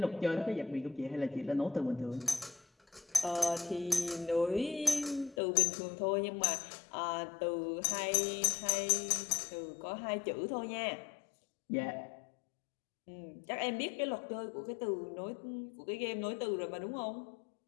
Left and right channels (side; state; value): right; drops out; at 5.4 s